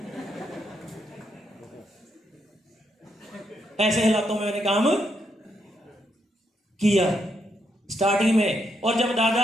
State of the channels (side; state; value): both; normal; correlation 0.78